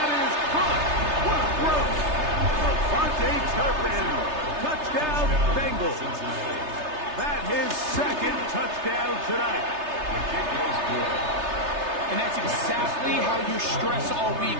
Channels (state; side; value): late; left; 3.3 ms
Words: is caught. What a throw. Avante Turpin. Touchdown, Bengals. That his second touchdown tonight. The kick is good. And that's exactly how you stress all week,